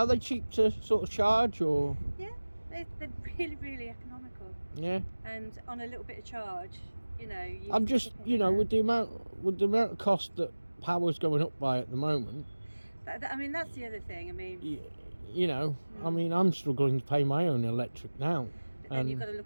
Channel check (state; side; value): inverted; both; correlation -1.00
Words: they cheap to sort of charge, or? Yeah, they're really economical, Yeah. and on a little bit of charge, you know. I'm just, with the amount of cost that power's going up by at the moment, I mean, that's the other thing. I mean, I mean, I'm struggling to pay my own electric now. but then you've got to